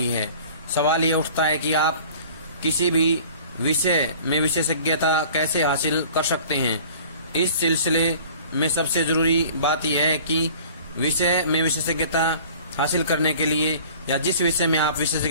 है। सवाल ये उठता है कि आप किसी भी विषय में विशेषज्ञता कैसे हासिल कर सकते हैं। इस सिलसिले में सबसे जरूरी बात यह है कि विषय में विशेषज्ञता हासिल करने के लिए या जिस विषय में आप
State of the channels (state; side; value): inverted; both; correlation -0.46